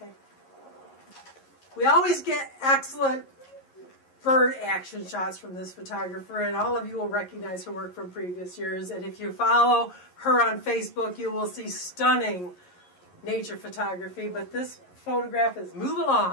Okay. We always get excellent bird action shots from this photographer, and all of you will recognize her work from previous years. And if you follow her on Facebook, you will see stunning nature photography. But this photograph is Move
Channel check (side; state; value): right; late; 11 ms